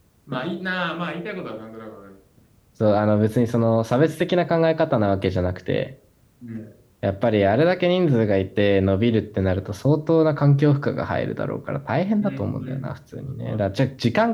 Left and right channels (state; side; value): identical; both; correlation 1.00